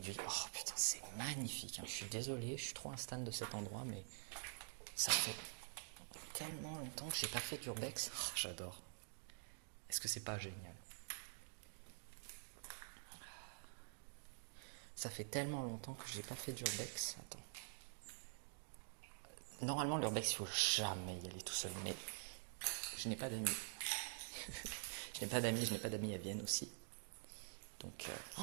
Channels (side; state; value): left; silent; digital silence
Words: Oh putain, c'est magnifique, hein. Je suis désolé, je suis trop un stan de cet endroit, mais ça fait tellement longtemps que j'ai pas fait d'urbex. Oh, j'adore. Est-ce que c'est pas génial? Ça fait tellement longtemps que j'ai pas fait d'urbex. Attends. Normalement, l'urbex, il faut jamais y aller tout seul, mais je n'ai pas d'amis. Je n'ai pas d'amis à Vienne aussi. Donc,